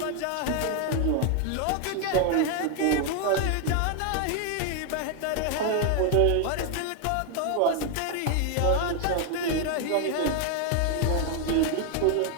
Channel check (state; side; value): different; both; correlation 0.00